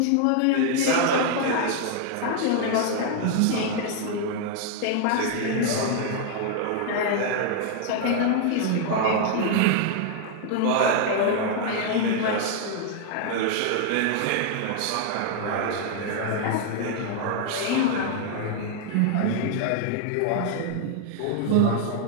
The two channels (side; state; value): both; different; correlation 0.00